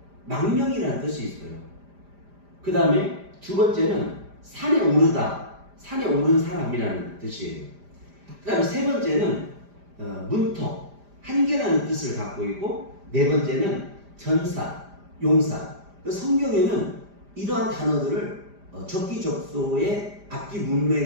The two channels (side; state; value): left; late; 5.0 ms